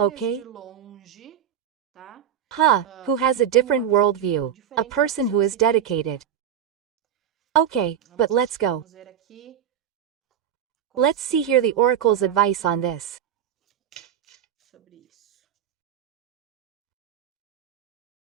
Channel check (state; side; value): quieter; left; 9.6 dB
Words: Who has a different worldview, a person who is dedicated. Okay, but let's go. Let's see here the oracle's advice on this.